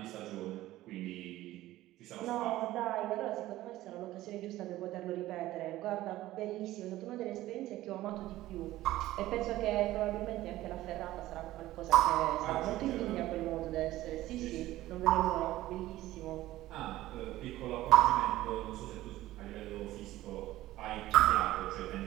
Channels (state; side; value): quieter; left; 15.8 dB